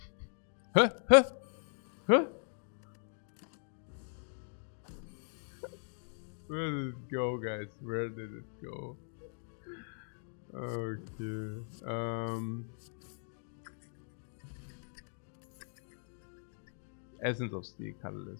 Huh? Huh? Huh? Where did it go, guys? Where did it go? Okay. Essence of Steel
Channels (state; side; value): silent; right; digital silence